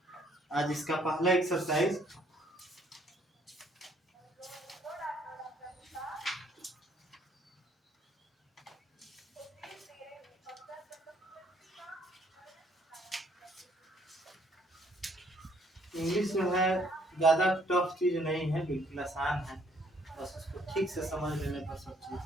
आज इसका पहला एक्सरसाइज। इंग्लिश जो है ज़्यादा टफ चीज़ नहीं है, बिल्कुल आसान है, बस उसको ठीक से समझ लेने पर सब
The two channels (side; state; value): both; normal; correlation 0.65